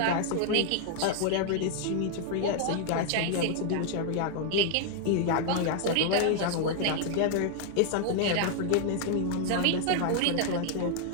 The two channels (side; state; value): both; different; correlation 0.00